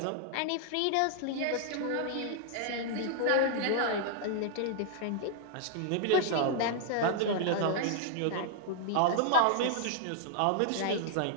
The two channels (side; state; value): both; different; correlation -0.01